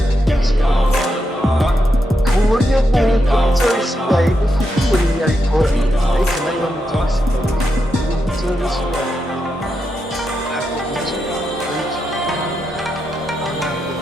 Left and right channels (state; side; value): normal; both; correlation 0.85